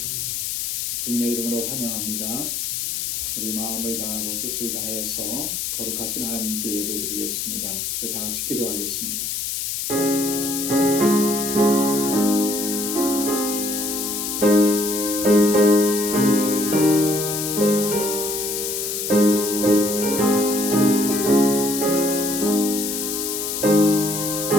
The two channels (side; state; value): left; noise; hiss, 2 dB below the sound